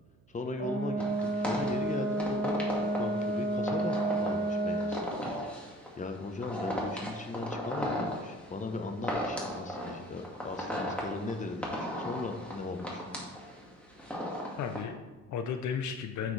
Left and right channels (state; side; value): noise; right; hum, 30 dB below the sound